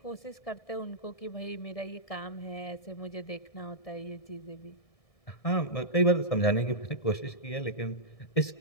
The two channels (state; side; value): late; right; 1.7 ms